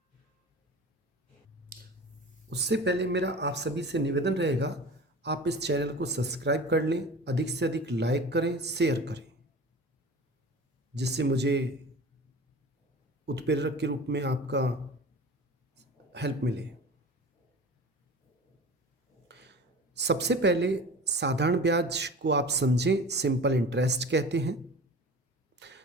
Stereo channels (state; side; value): normal; both; correlation 0.37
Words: उससे पहले मेरा आप सभी से निवेदन रहेगा, आप इस चैनल को सब्सक्राइब कर लें, अधिक से अधिक लाइक करें, शेयर करें, जिससे मुझे उत्प्रेरक के रूप में आपका हेल्प मिले। सबसे पहले साधारण ब्याज को आप समझें, सिंपल इंटरेस्ट कहते हैं।